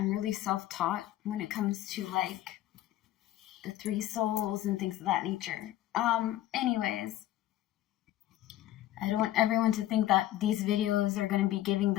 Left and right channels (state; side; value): quieter; right; 14.0 dB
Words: really self-taught when it comes to like the three souls and things of that nature. Anyways, I don't want everyone to think that these videos are going to be giving